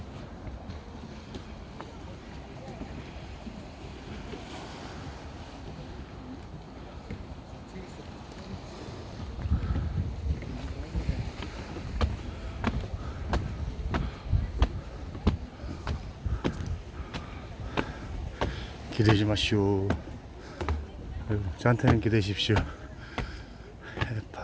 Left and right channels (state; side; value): identical; both; correlation 1.00